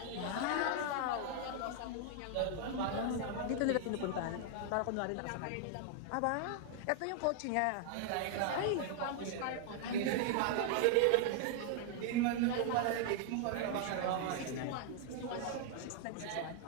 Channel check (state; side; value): different; both; correlation 0.00